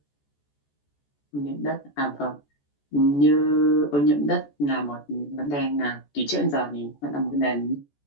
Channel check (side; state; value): right; late; 14 ms